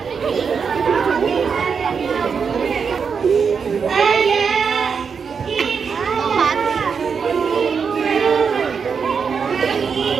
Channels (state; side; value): quieter; left; 6.1 dB